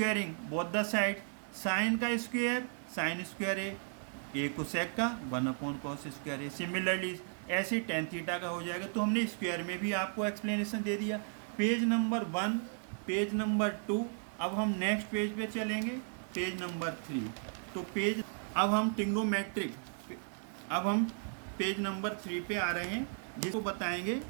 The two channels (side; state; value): left; silent; 54 dB below the other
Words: both the side, sine का square sine square A cosec का 1/कॉस स्क्वायर ए। सिमिलरली ऐसे टेन थीटा का हो जाएगा। तो हमने स्क्वायर में भी आपको एक्सप्लेनेशन दे दिया। Page number 1, page number 2। अब हम नेक्स्ट पेज पे चलेंगे, पेज नंबर 3। तो पेज अब हम ट्रिग्नोमेट्रिक, अब हम पेज नंबर 3 पे आ रहे हैं, जिसको बताएंगे